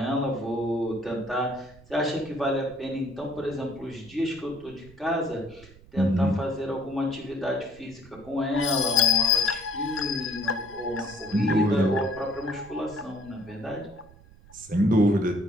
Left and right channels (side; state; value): right; noise; rumble, 23 dB below the sound